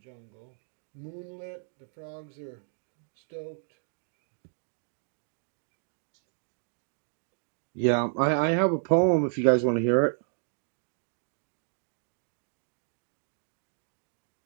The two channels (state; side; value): silent; left; digital silence